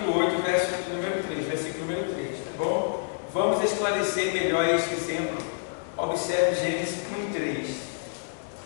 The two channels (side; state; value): right; silent; digital silence